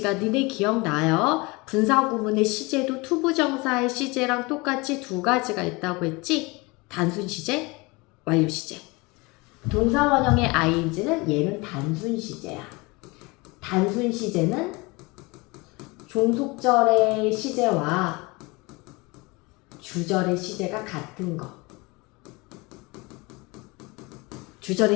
니네 기억나요? 분사 구문의 시제도 투부정사의 시제랑 똑같이 두 가지가 있다고 했지? 단순 시제, 완료 시제. 동사 원형의 ing는 얘는 단순 시제야. 단순 시제는 종속절의 시제와 주절의 시제가 같은 거. 주절의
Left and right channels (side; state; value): right; quieter; 25.4 dB